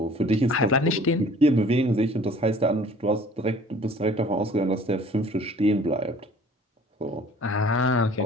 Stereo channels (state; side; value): normal; both; correlation 0.51